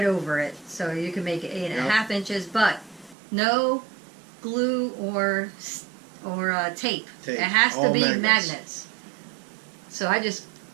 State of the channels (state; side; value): drops out; left; at 3.2 s